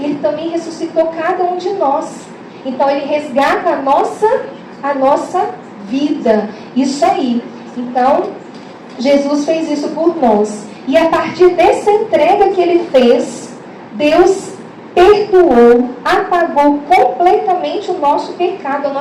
também ressuscitou cada um de nós. Então ele resgata a nossa vida. Isso aí. Então, Jesus fez isso por nós. E a partir dessa entrega que ele fez, Deus perdoou, apagou completamente o nosso pecado, a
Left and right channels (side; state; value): both; identical; correlation 1.00